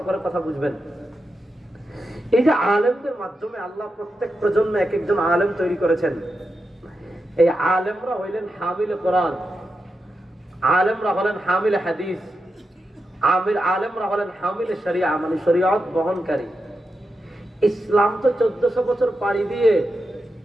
করে কথা বুঝবেন। এই যে আলেমদের মাধ্যমে আল্লাহ প্রত্যেক প্রজন্মে এক একজন আলেম তৈরি করেছেন। এই আলেমরা হইলেন হামিল কোরআন, আলেমরা হলেন হামিল হাদিস, আলেমরা হলেন হামিল শরিয়া, মানে শরিয়ত বহনকারী। ইসলাম তো 1400 বছর পাড়ি দিয়ে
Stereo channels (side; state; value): both; normal; correlation 0.88